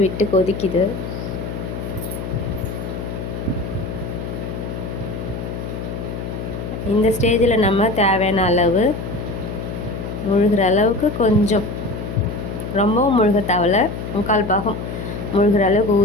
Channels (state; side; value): noise; left; hum, 6 dB below the sound